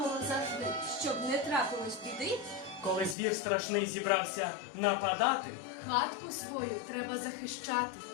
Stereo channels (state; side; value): drops out; right; at 3.2 s